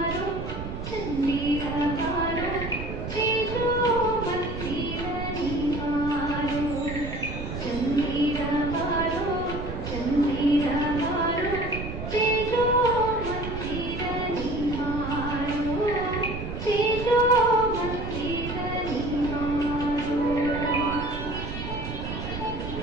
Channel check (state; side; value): noise; right; rumble, 7 dB below the sound